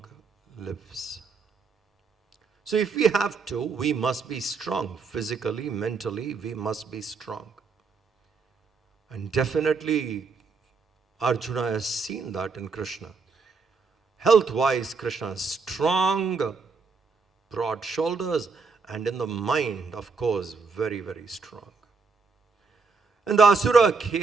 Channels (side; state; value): left; quieter; 4.7 dB